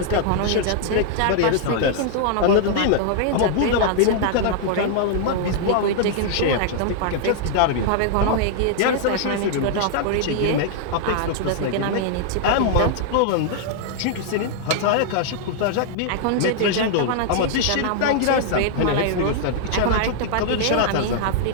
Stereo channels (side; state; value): both; different; correlation -0.01